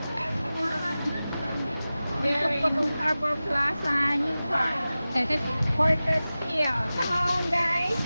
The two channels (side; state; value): both; inverted; correlation -0.96